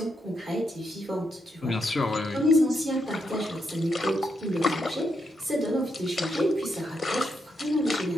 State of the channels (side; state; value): both; normal; correlation 0.81